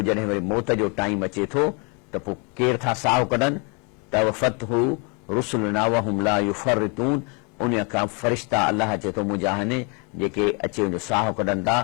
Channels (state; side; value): quieter; right; 33.6 dB